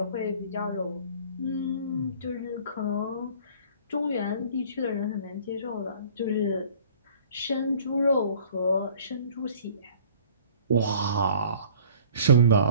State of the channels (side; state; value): both; inverted; correlation -0.51